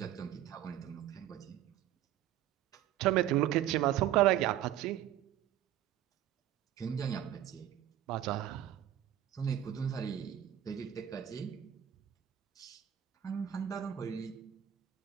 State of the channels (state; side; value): quieter; left; 11.8 dB